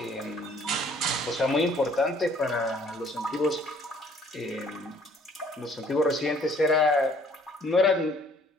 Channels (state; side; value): normal; both; correlation 0.59